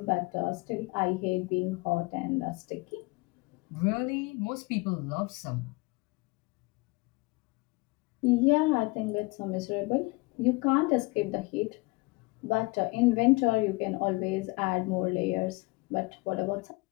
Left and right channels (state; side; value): quieter; right; 25.4 dB